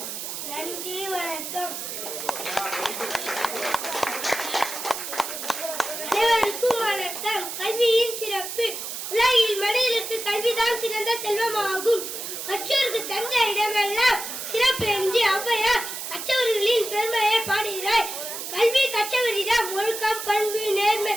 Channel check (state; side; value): noise; right; hiss, 6 dB below the sound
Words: நன்றி. வணக்கம். அனைவருக்கும் வணக்கம். கல்வியின் சிறப்பு. உலகில் மனிதருக்கு கல்விதான் சிறந்த செல்வமாகும். கற்றோருக்கு சென்ற இடமெல்லாம் சிறப்பு என்று ஔவையார் கற்றவர்களின் பெருமையை பாடுகிறார். கல்வி கற்றவரிடம் ஒழுக்கம், பண்பு, நேர்மை,